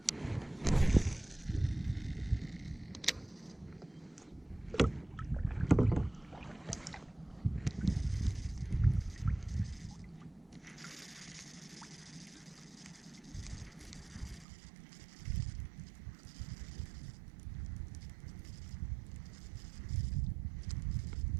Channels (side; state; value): left; drops out; at 14.5 s